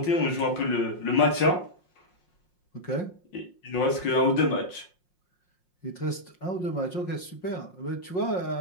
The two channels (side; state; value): right; late; 5.6 ms